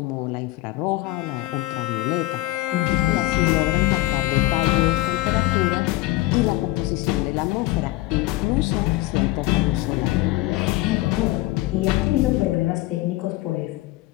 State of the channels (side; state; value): right; quieter; 18.5 dB